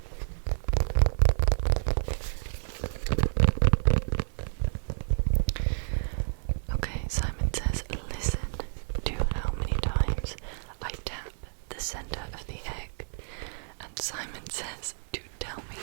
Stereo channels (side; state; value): left; silent; digital silence